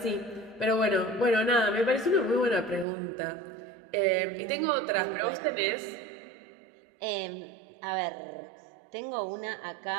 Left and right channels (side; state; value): left; drops out; at 2.9 s